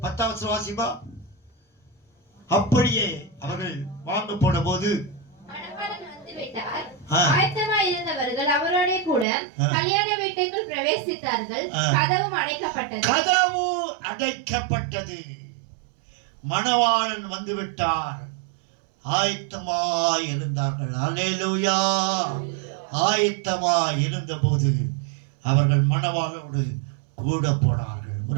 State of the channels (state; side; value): drops out; left; at 9.2 s